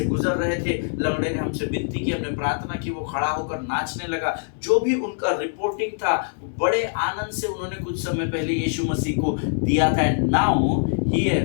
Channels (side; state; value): right; silent; 63 dB below the other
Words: गुजर रहे थे, लंगड़े ने हमसे विनती की, हमने प्रार्थना की, वो खड़ा होकर नाचने लगा। जो भी उनका रिपोर्टिंग था, बड़े आनंद से उन्होंने कुछ समय पहले यीशु मसीह को दिया था। And now